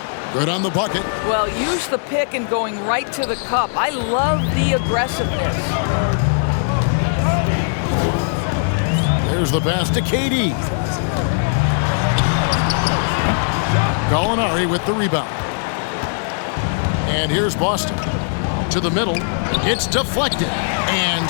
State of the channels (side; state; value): right; silent; digital silence